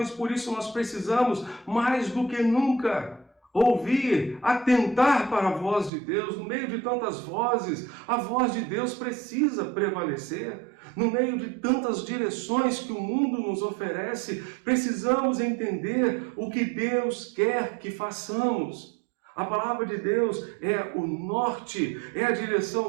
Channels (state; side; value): drops out; left; at 5.9 s